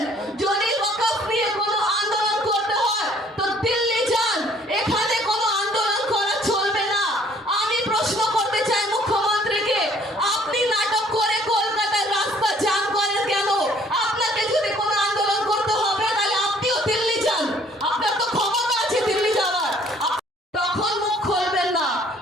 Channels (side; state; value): both; normal; correlation 0.59